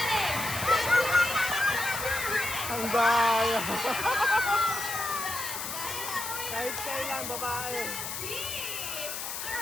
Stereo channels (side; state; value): left; noise; hiss, 5 dB below the sound